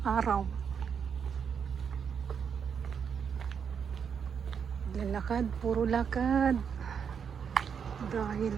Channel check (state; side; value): quieter; left; 7.0 dB